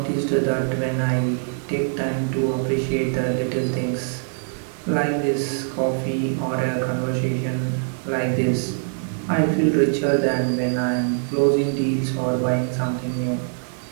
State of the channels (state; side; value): silent; left; 63 dB below the other